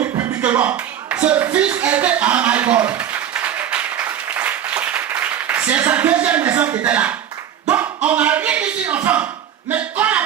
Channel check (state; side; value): quieter; left; 9.8 dB